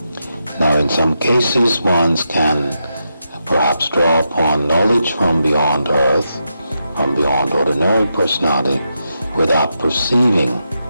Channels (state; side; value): inverted; both; correlation -0.85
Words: Now, in some cases, one can perhaps draw upon knowledge from beyond earth, from beyond ordinary personality, without perceiving